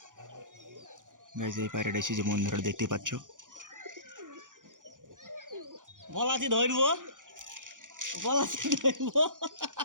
গাইস এই পায়রাটা এসেছে বন্ধুরা দেখতেই পাচ্ছ। বলাছি ধরবো, বলাছি ধরবো।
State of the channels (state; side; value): late; left; 0.88 ms